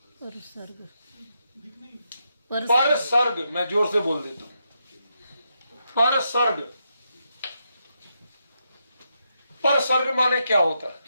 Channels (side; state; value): both; inverted; correlation -0.82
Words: पर सर्ग, मैं जोर से बोल देता हूं, पर सर्ग। पर सर्ग माने क्या होता